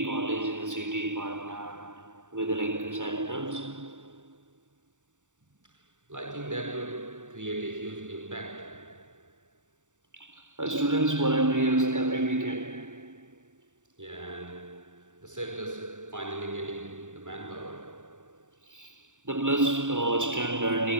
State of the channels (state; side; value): late; left; 0.86 ms